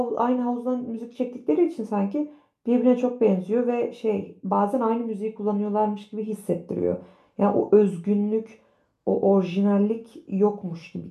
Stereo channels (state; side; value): identical; both; correlation 1.00